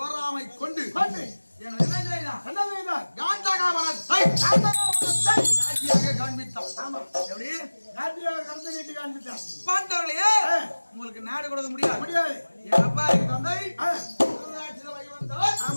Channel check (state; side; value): inverted; both; correlation -1.00